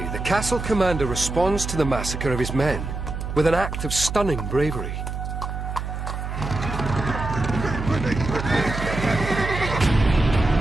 the castle commander responds to the massacre of his men with an act of stunning bravery.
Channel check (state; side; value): noise; right; hum, 5 dB below the sound